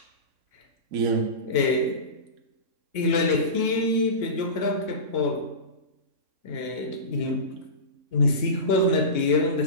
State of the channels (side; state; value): left; late; 2.9 ms